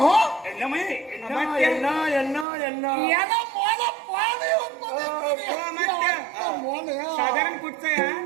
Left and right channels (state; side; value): drops out; left; at 2.5 s